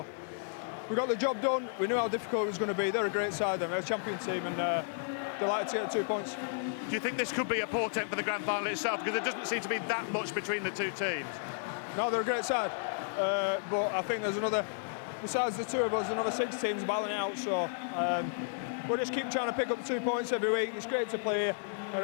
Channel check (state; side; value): silent; right; digital silence